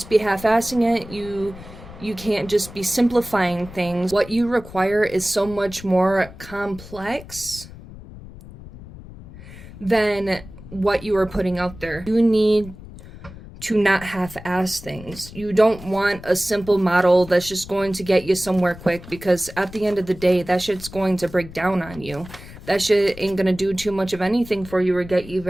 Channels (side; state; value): left; noise; rumble, 16 dB below the sound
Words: be half-assing it. You can't just be simplifying things. What you require is so much more complex than what you are putting out there. You need to not half-ass things. You don't want a simple model that's just going to get you somewhere quick, because at the end of the day, that shit's going to break down on you. that shit ain't gonna do too much of anything for you or get you